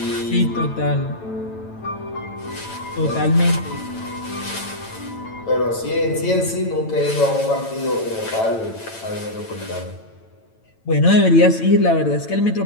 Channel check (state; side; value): late; right; 9.0 ms